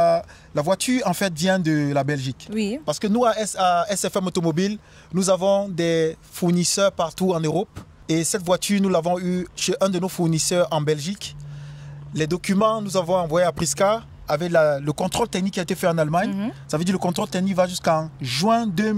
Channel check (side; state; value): both; identical; correlation 1.00